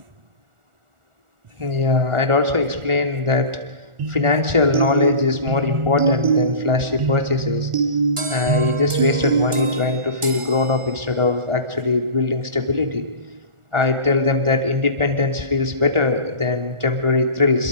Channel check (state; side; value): late; left; 1.4 ms